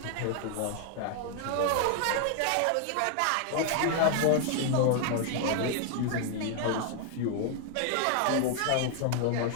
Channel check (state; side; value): different; both; correlation 0.00